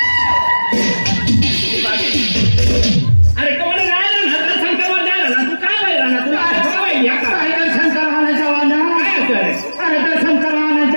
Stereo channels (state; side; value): inverted; both; correlation -1.00